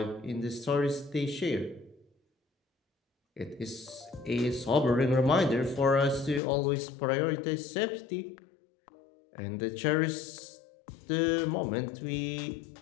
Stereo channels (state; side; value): drops out; right; at 6.4 s